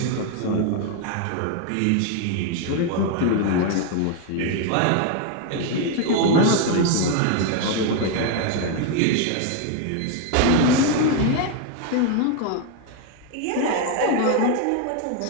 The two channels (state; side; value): different; both; correlation 0.01